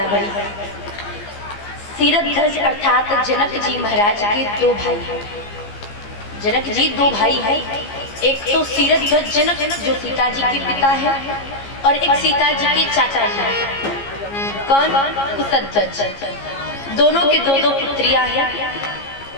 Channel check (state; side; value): late; right; 15 ms